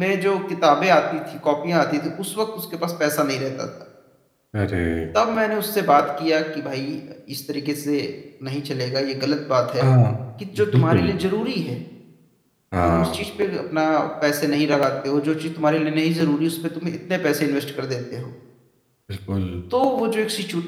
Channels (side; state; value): both; identical; correlation 1.00